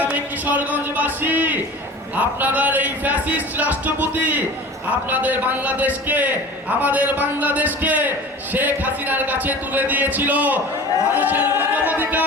আমি কিশোরগঞ্জবাসী, আপনাদের এই ফ্যাসিস্ট রাষ্ট্রপতি আপনাদের বাংলাদেশকে, আমাদের বাংলাদেশকে শেখ হাসিনার কাছে তুলে দিয়েছিল। মানুষের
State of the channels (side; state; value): both; normal; correlation 0.39